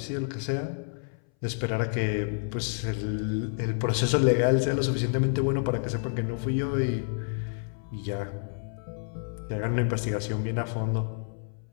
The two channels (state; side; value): silent; right; 59 dB below the other